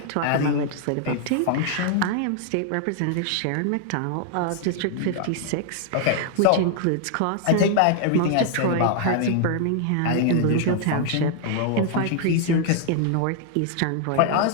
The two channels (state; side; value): different; both; correlation 0.00